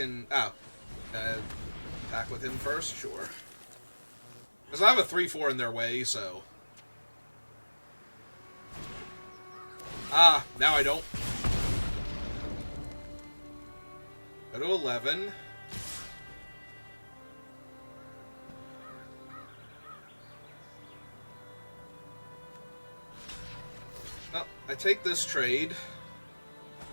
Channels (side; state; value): both; inverted; correlation -1.00